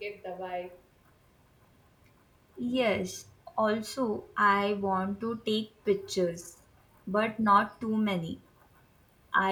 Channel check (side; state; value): both; identical; correlation 1.00